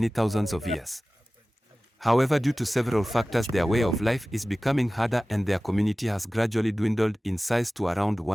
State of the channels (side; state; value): both; normal; correlation 0.97